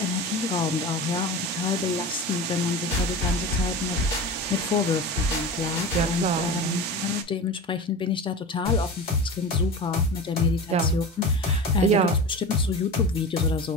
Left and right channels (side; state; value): both; normal; correlation 0.30